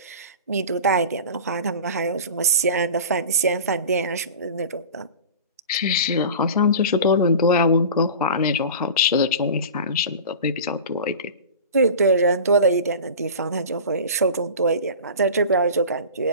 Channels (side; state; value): both; inverted; correlation -0.34